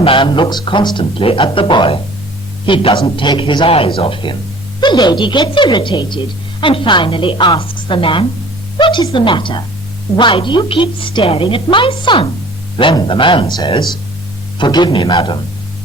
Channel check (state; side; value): normal; both; correlation 0.48